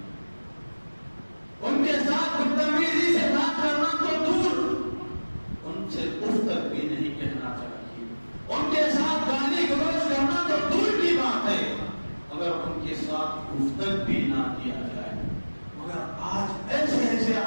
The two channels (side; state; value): both; inverted; correlation -1.00